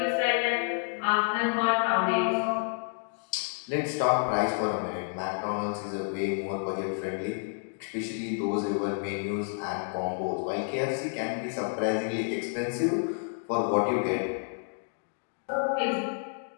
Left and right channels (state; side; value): silent; right; 58 dB below the other